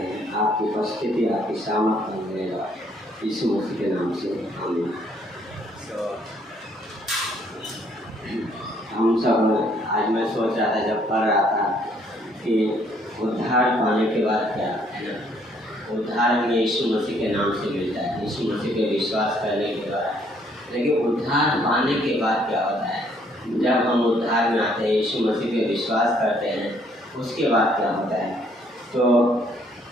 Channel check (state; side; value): normal; both; correlation 0.66